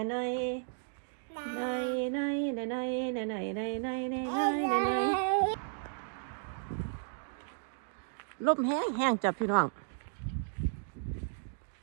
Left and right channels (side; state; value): left; silent; digital silence